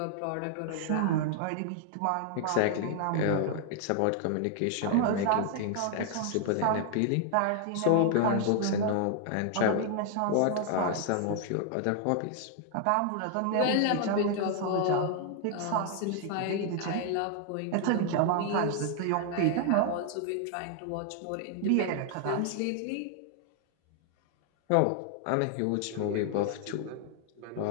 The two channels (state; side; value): different; both; correlation 0.00